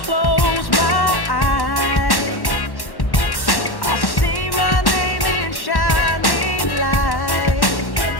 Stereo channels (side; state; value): right; late; 1.1 ms